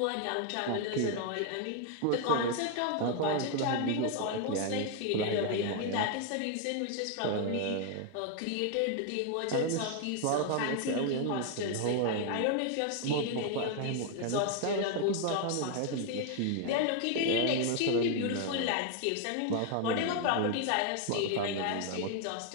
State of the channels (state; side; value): different; both; correlation 0.00